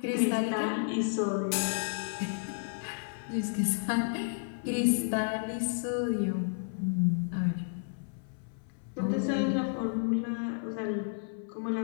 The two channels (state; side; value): silent; right; 57 dB below the other